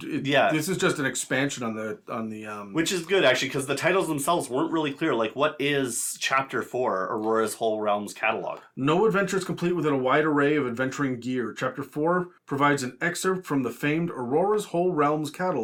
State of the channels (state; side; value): identical; both; correlation 1.00